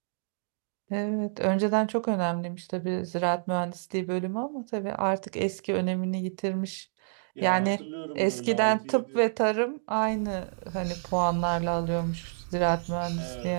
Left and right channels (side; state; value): left; silent; digital silence